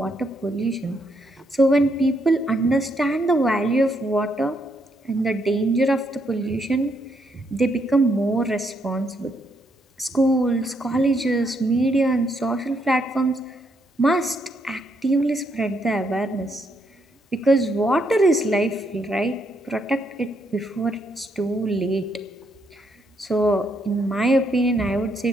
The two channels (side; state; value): both; normal; correlation 0.75